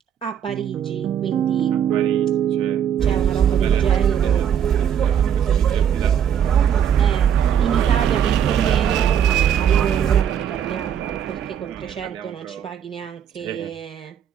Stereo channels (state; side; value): quieter; left; 8.9 dB